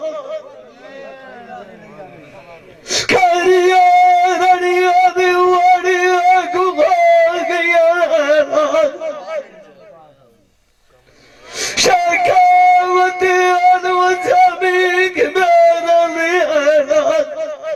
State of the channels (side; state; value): both; identical; correlation 1.00